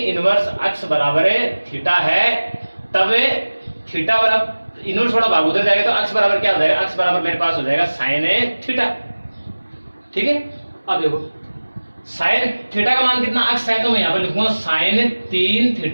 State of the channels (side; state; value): both; inverted; correlation -1.00